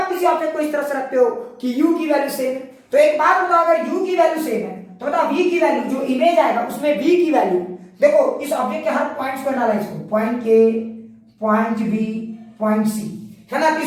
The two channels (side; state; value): both; identical; correlation 1.00